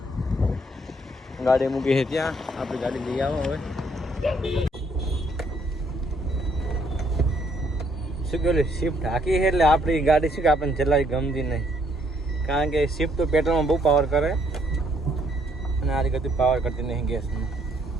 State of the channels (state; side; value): normal; both; correlation 0.68